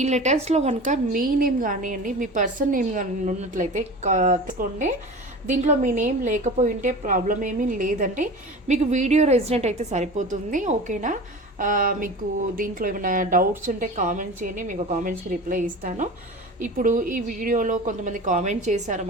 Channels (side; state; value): both; normal; correlation 0.34